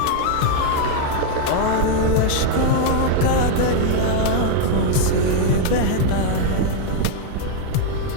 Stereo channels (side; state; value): both; different; correlation 0.00